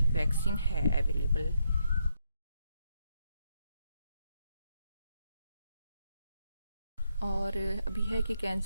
वैक्सीन है अवेलेबल। और अभी है कि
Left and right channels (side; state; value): both; inverted; correlation -0.78